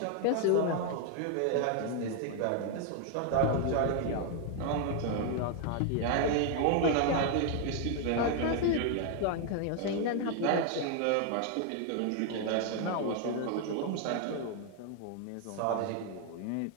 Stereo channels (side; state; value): both; different; correlation 0.00